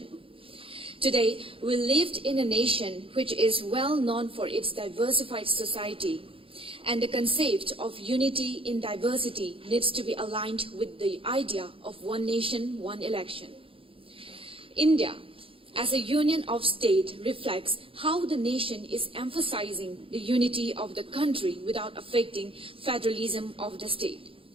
Today, we live in a nation which is well known for its diversified society, and the concept of unity in diversity needs to be aligned with the idea of one nation, one election. India, as a union of states, reflects how the nation is emphasizing the unity of the country without affecting federalism of the state.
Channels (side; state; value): left; late; 0.26 ms